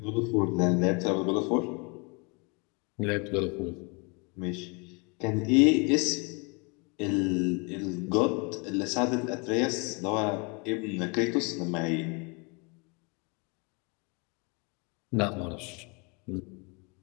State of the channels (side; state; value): right; quieter; 31.6 dB